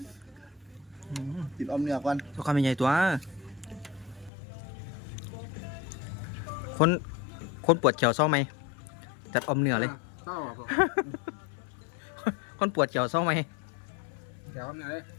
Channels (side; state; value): right; drops out; at 4.3 s